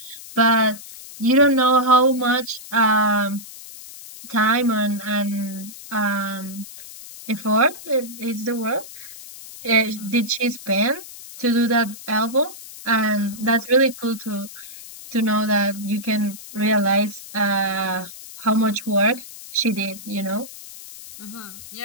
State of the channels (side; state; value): left; noise; hiss, 15 dB below the sound